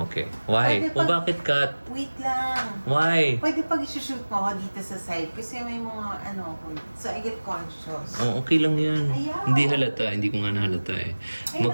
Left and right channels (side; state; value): both; inverted; correlation -1.00